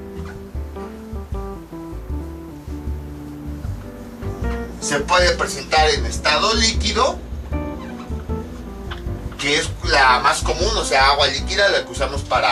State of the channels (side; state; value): both; identical; correlation 1.00